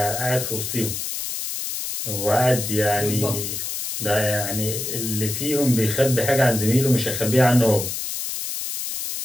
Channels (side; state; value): left; noise; hiss, 5 dB below the sound